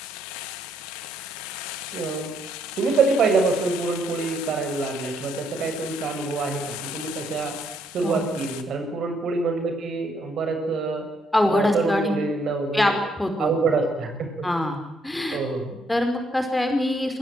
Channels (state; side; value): normal; both; correlation 0.72